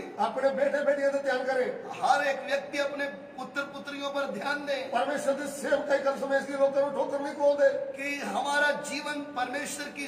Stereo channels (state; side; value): identical; both; correlation 1.00